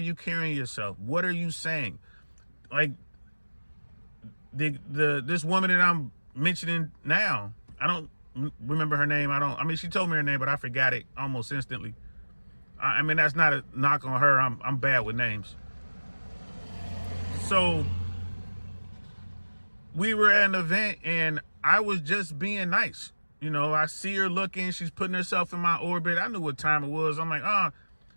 carrying yourself? What are you saying? Like this woman that I'm mentioning now, I don't remember her name. She told me her name, but I forgot it almost instantly. I mean, that's not a knock on her. I'm bad with names. So we were at an event and I was just being nice. I see her looking, she's putting herself in my orbit. I knew what time it was. I'm like,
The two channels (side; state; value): both; inverted; correlation -1.00